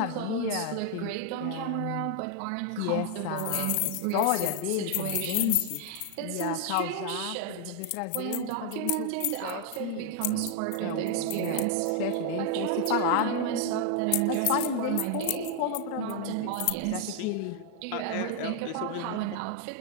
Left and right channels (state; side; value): different; both; correlation 0.00